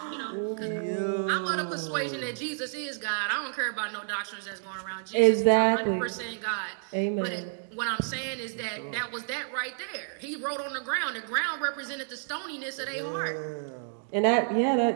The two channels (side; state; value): left; silent; digital silence